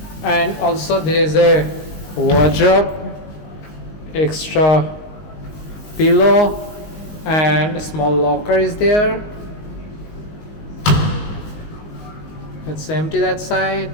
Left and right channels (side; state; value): right; late; 19 ms